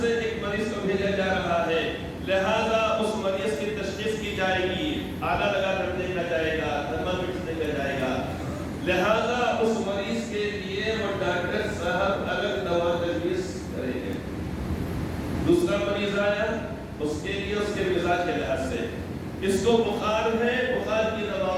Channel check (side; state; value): both; identical; correlation 1.00